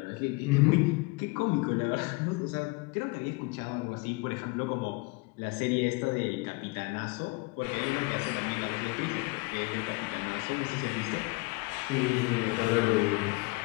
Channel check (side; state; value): right; quieter; 26.1 dB